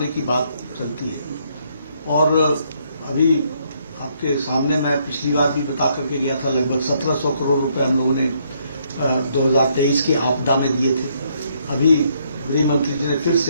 की बात चलती है, और अभी आपके सामने मैं पिछली बार भी बता करके गया था, लगभग 1700 करोड़ रुपए हम लोगों ने 2023 की आपदा में दिए थे। अभी गृह मंत्री जी ने फिर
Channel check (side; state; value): both; inverted; correlation -0.71